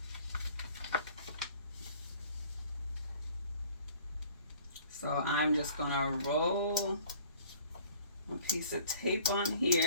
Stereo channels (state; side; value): inverted; both; correlation -0.51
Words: So I'm just gonna roll a piece of tape on